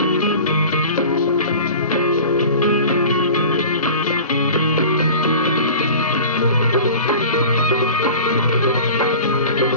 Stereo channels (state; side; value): inverted; both; correlation -0.38